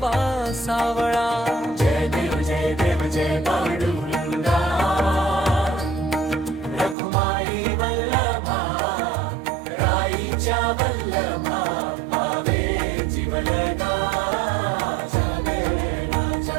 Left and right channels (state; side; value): drops out; left; at 7.0 s